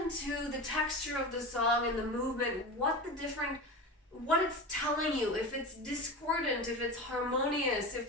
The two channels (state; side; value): normal; both; correlation 0.27